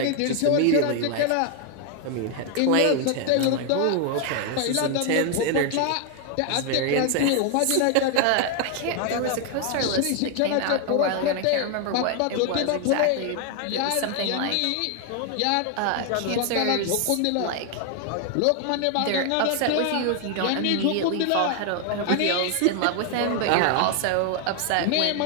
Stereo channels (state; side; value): different; both; correlation 0.00